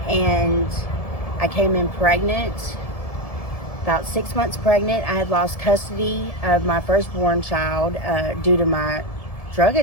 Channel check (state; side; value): late; right; 1.7 ms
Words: and I came in pregnant, about 6 months pregnant. I had lost custody of my firstborn child due to my drug